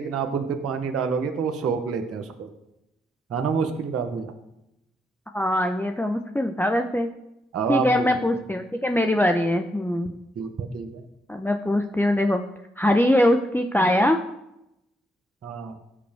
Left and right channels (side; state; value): both; normal; correlation 0.78